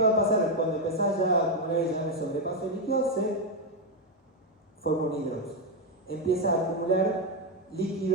va a pasar? Cuando empezás ya a acumular ya en el sobrepaso de líquido, se forma un hidrox. Empieza a acumular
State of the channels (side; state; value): both; normal; correlation 0.05